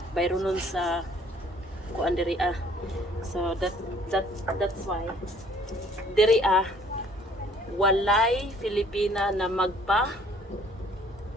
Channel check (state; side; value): normal; both; correlation 0.57